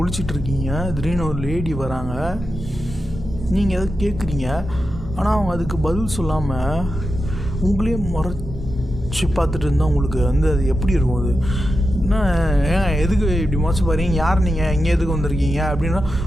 திடீர்னு ஒரு லேடி வராங்க, நீங்கள் எதை கேட்குறீங்க, ஆனால் அவங்க அதுக்கு பதில் சொல்லாமல் உங்களே முறைச்சி பார்த்துட்டு இருந்தால் உங்களுக்கு வந்து அது எப்படி இருக்கும்? அது என்ன, ஏன் எதுக்கு இப்படி முறைச்சி பாருங்க, யார் நீங்கள், இங்கே எதுக்கு வந்திருக்கீங்க அப்படின்னா,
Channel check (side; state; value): both; normal; correlation 0.89